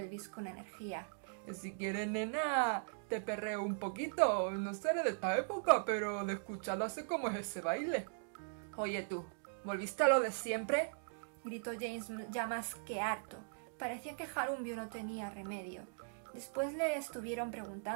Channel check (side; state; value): left; silent; digital silence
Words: con energía. Si quieres, nena, te perreo un poquito. No seré de esta época, pero de escucharlo sé cómo es ese baile. Oye tú, ¿volviste a lo de siempre? Gritó James, ya más que harto. Parecía que Harumiu no tenía remedio. Después le estuvieron